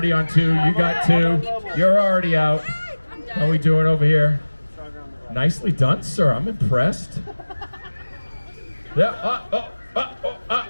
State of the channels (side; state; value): both; inverted; correlation -1.00